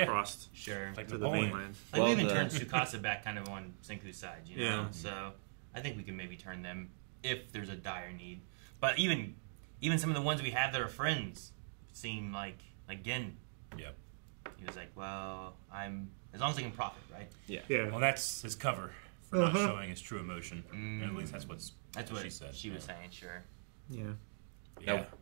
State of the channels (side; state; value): left; silent; digital silence